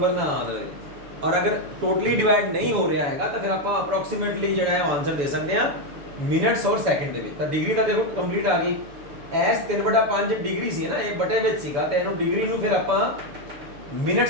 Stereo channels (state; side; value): late; left; 7.0 ms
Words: ਨਾ ਆ ਜਾਵੇ और अगर टोटली डिवाइड नहीं हो रहा है तो फिर आप अप्रोक्सीमेटली जो है आंसर दे सकते हैं मिनट्स और सैकेंड ਦੇ ਤਾਂ डिग्री ਤਾਂ ਦੇਖੋ ਕੰਪਲੀਟ ਆ ਗਈ ਐਸ 3/5 डिग्री ਸੀ ਨਾ ਇਹ ਬਟੇ ਵਿੱਚ ਸੀਗਾ ਤੇ ਇਹਨੂੰ डिग्री ਨੂੰ ਫਿਰ ਆਪਾਂ